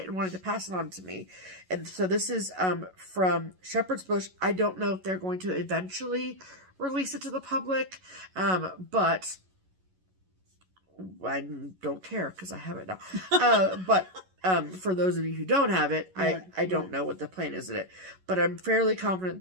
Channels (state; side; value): late; left; 11 ms